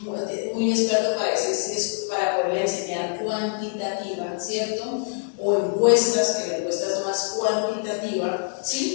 muy experto para decir si es para poder enseñar cuantitativa, ¿cierto? O encuestas, que la encuesta es más cuantitativa,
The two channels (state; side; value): silent; right; 62 dB below the other